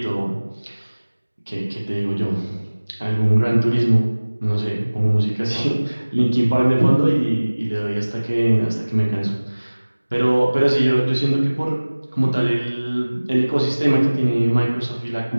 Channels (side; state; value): both; inverted; correlation -1.00